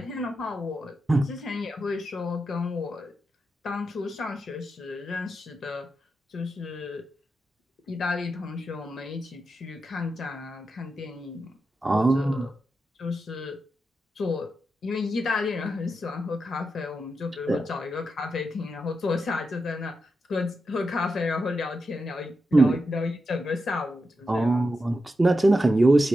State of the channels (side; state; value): both; normal; correlation 0.87